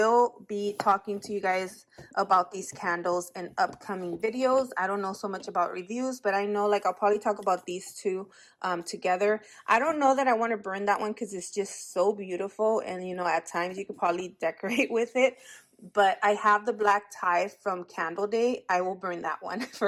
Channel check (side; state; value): both; identical; correlation 1.00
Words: be talking to you guys about these candles in upcoming videos. I don't know so much about reviews, but I know like I'll probably talk about these two together. I don't know that I want to burn that one because it's just so beautiful, and you know, at times you could probably decorate with it. But I have the black tie from Candle Day. I will burn that one